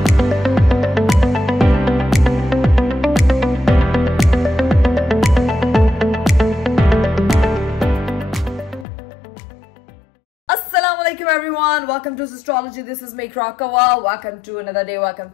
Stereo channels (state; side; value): drops out; right; at 8.8 s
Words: Everyone, welcome to Astrology. This is me Krakawa. Welcome to another day. Welcome